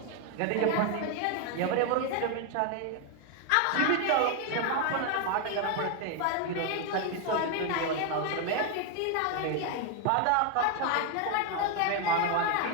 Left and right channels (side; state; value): both; different; correlation 0.01